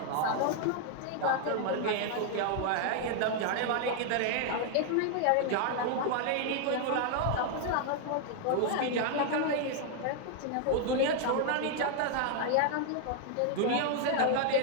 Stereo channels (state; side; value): different; both; correlation 0.00